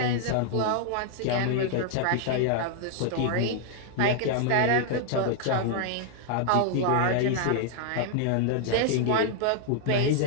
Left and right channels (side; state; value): both; different; correlation 0.00